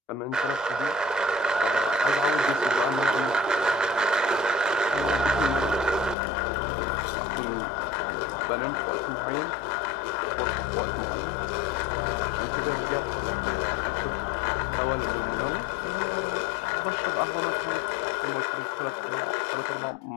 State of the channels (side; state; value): right; drops out; at 6.2 s